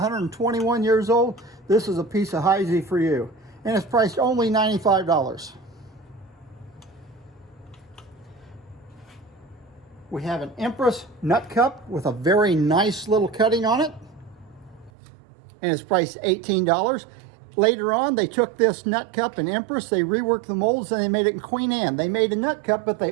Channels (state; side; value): drops out; left; at 14.9 s